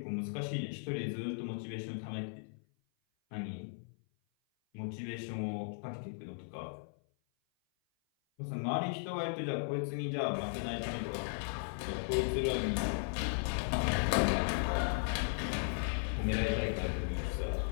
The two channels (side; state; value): right; silent; 53 dB below the other